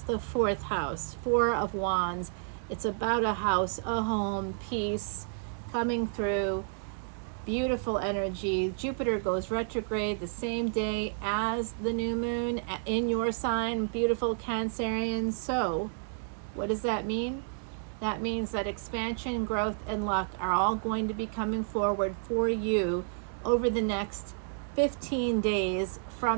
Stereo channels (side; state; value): left; silent; digital silence